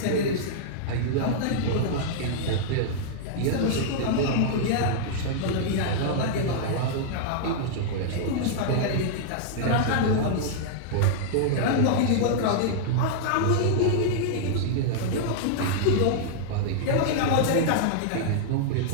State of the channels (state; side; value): different; both; correlation -0.01